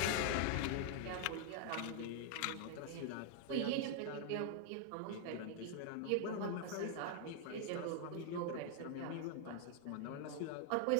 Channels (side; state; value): both; different; correlation 0.00